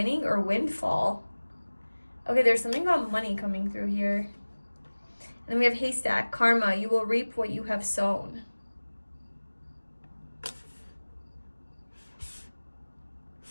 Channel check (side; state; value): both; inverted; correlation -1.00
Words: or windfall. Okay, there's something about money coming through here. And then we have haystack, karma, you will reap what you have sown.